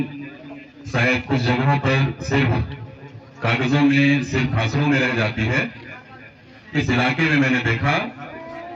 शायद कुछ जगहों पर सिर्फ कागजों में, सिर्फ भाषणों में रह जाती है, इस इलाके में मैंने देखा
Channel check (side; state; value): both; identical; correlation 1.00